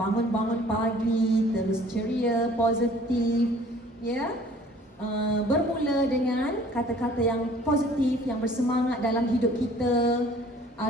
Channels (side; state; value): both; normal; correlation 0.53